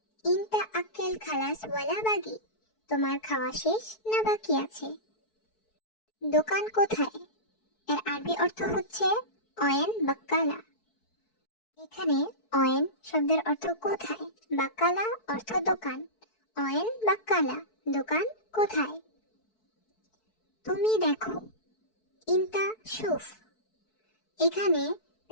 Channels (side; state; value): right; late; 4.6 ms